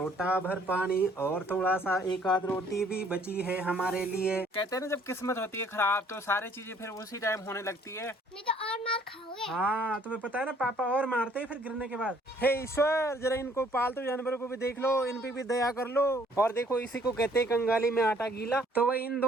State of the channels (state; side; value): normal; both; correlation 0.61